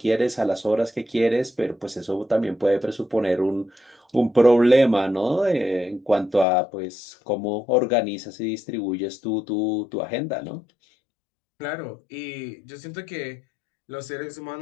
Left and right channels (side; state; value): right; drops out; at 6.5 s